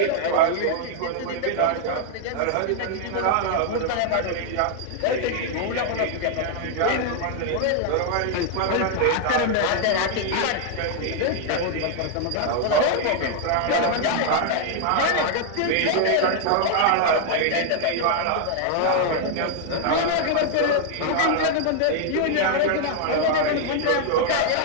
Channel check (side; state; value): both; different; correlation 0.00